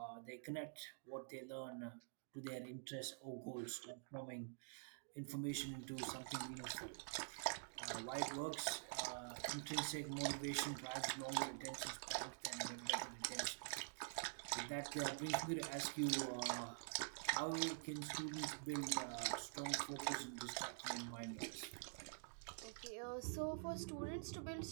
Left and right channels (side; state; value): left; silent; digital silence